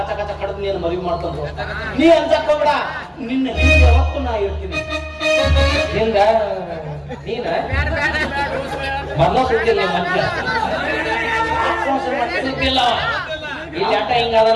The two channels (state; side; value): identical; both; correlation 1.00